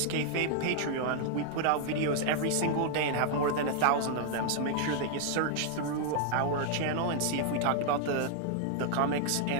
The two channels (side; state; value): both; different; correlation 0.00